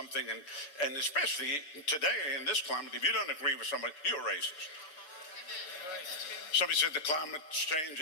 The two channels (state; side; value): late; right; 6.7 ms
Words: and especially today in this climate, if you don't agree with somebody, you're racist. Somebody said the climate's